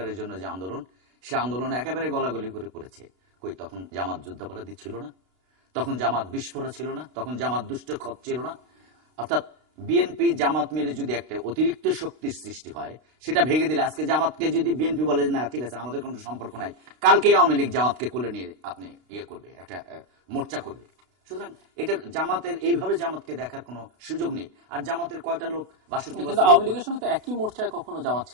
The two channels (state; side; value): late; left; 32 ms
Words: জন্য যে আন্দোলন, সে আন্দোলন একেবারে গলাগলি করে করেছে। কই তখন জামাত যুদ্ধাপরাধী ছিল না, তখন জামাত বিস্ফোরা ছিল না, তখন জামাত দুষ্ট খত ছিল না। অর্থাৎ বিএনপি জামাত মিলে যদি একটা অতিরিক্ত শক্তির সৃষ্টি হয়, সেটা ভেঙে দিলে আজকে জামাতকে যদি বিএনপি বলে না ঠিক আছে আমাদের কোনো সম্পর্ক নাই, কালকেই আওয়ামী লীগ জামাতকে কোলে নিয়ে আপনি ইয়ে করবে, একটা মোর্চা করবে। সুতরাং এটা জামাতের এইভাবে জামাতকে দেখার কোনো সুযোগ নেই। আর জামাতের কয়টা লোক 62 বছর আওয়ামী লীগের সঙ্গে তো একই মোর্চায় কখনো জামাত